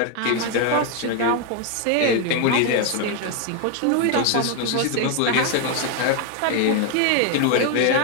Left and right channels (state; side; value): different; both; correlation 0.01